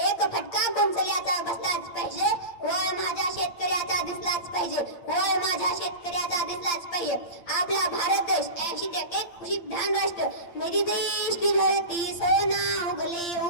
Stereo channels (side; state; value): right; late; 8.7 ms